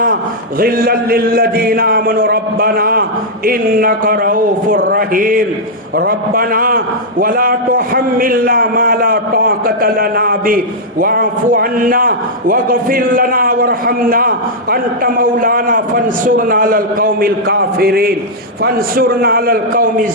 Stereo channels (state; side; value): normal; both; correlation -0.07